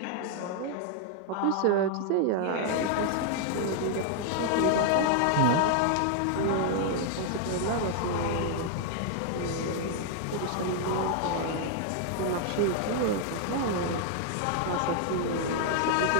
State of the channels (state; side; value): different; both; correlation 0.00